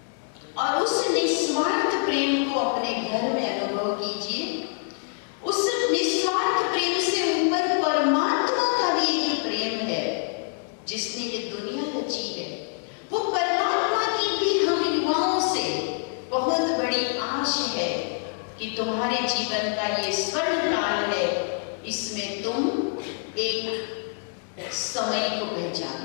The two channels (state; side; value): silent; right; 58 dB below the other